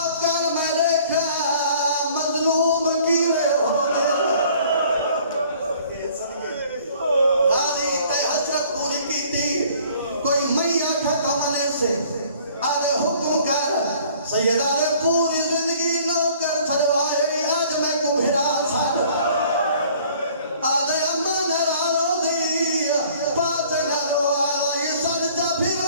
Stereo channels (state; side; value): inverted; both; correlation -0.55